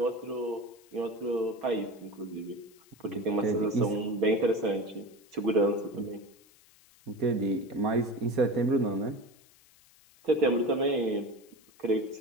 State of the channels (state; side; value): noise; left; hiss, 28 dB below the sound